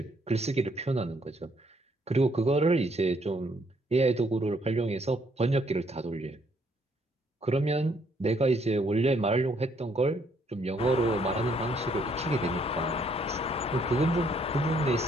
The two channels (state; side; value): normal; both; correlation 0.68